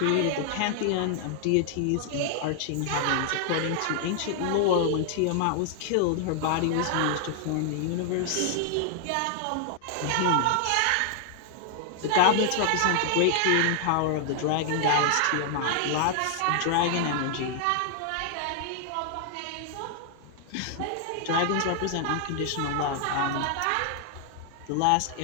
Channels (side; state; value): both; different; correlation 0.00